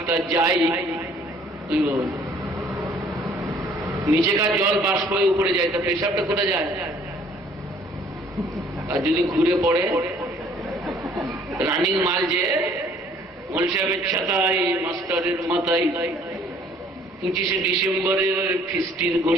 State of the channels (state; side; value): normal; both; correlation 0.58